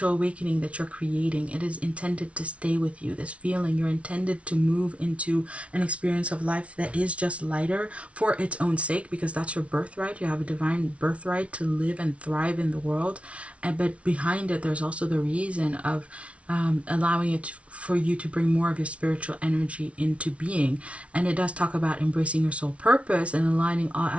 awakening that you're creating. It is intended to stay with you. This feeling, you're intended to move into an experience of life that is just lighter for its own sake, because that's your birthright. You have a divine birthright to live and thrive in the world. But behind it, there's also the reason of allowing it for you to bring more of your spiritual energy into being. And it does talk about embracing your soul purpose and aligning all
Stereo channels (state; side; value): late; left; 0.063 ms